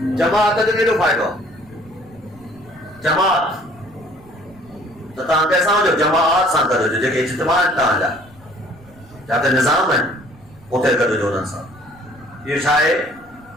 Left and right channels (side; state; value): right; noise; rumble, 26 dB below the sound